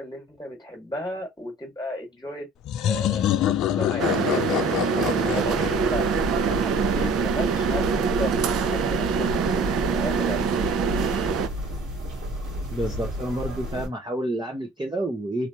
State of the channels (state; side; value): normal; both; correlation 0.48